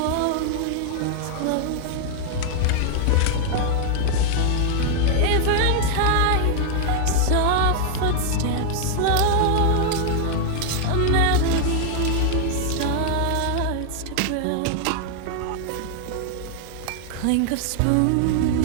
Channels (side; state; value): both; different; correlation 0.00